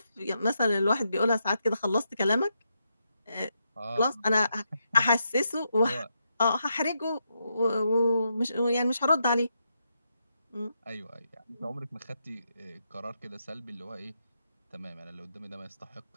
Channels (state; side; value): inverted; both; correlation -0.82